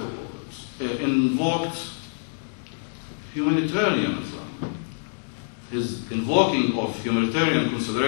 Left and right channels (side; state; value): right; silent; digital silence